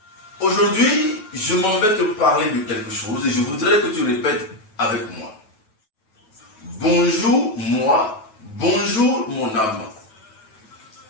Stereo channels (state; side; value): late; right; 9.2 ms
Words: Aujourd'hui, je m'en vais te parler de quelque chose et je voudrais que tu répètes avec moi. Bonjour moi, bonjour mon âme.